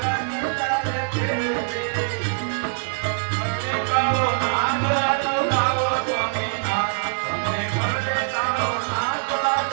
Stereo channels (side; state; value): left; silent; digital silence